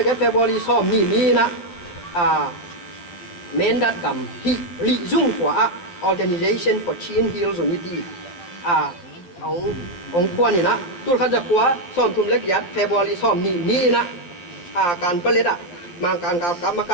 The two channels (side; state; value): right; late; 11 ms